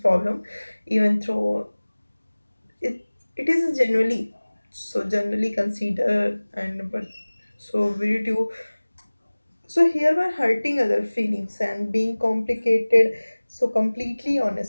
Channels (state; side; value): inverted; both; correlation -1.00